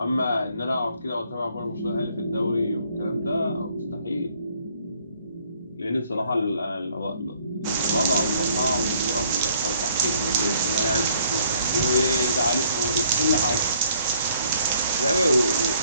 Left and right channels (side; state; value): both; inverted; correlation -0.63